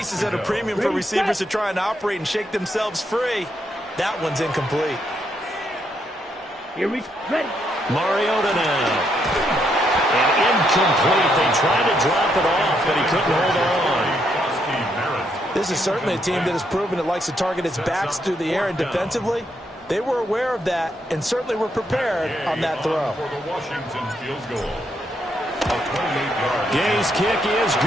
is at a premium for receivers to try and operate and shake themselves free. That one's incomplete. Here we ready. Mariota now. And incomplete. They tried to drop it off, but he couldn't hold on. This is certainly a team that has proven it likes to target its backs through the air, and defensively, they were aware of that and certainly were prepared on that throw. For the Washington field goal. A 28-yard. Gay's kick is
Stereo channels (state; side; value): normal; both; correlation 0.76